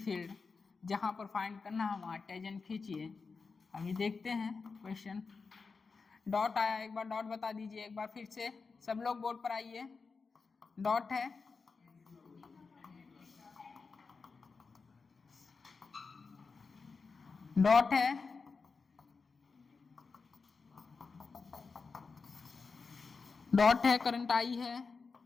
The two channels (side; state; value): right; quieter; 4.7 dB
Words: फील्ड जहां पर फाइंड करना है वहां टेजेंट खींचिए। अभी देखते हैं क्वेश्चन। डॉट आया, एक बार डॉट बता दीजिए, एक बार फिर से सब लोग बोर्ड पर आइए। डॉट है, डॉट है, डॉट है, करंट आई है,